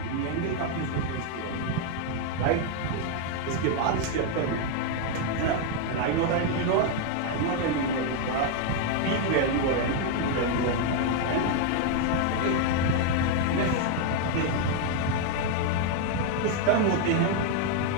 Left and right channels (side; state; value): both; different; correlation 0.01